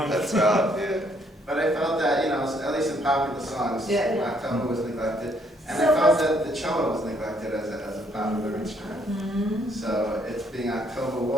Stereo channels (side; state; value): both; normal; correlation 0.68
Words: That's right. Yeah. But I felt that, at least in popular songs, Yeah. October was neglected. And So I felt that the cello was neglected as a popular instrument. So it's being October